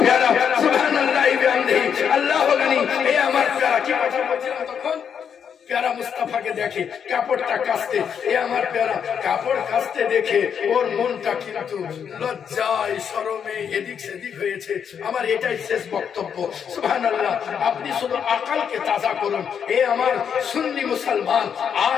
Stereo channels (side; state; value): right; quieter; 7.6 dB